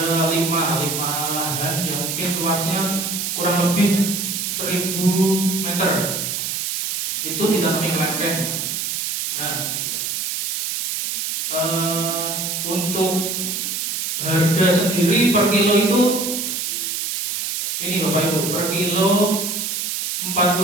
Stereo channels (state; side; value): noise; right; hiss, 2 dB below the sound